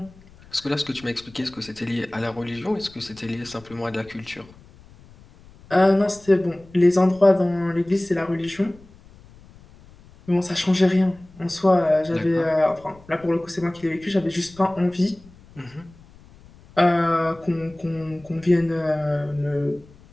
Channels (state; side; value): noise; left; rumble, 24 dB below the sound